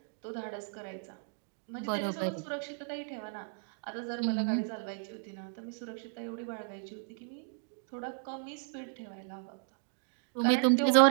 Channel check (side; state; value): left; silent; digital silence